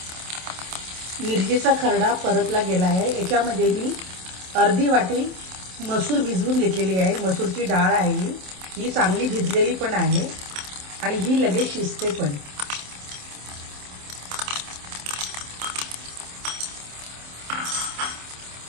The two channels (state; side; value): late; left; 27 ms